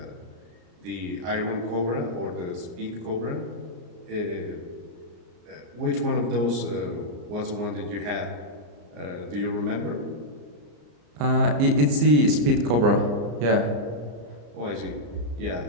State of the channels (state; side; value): late; left; 34 ms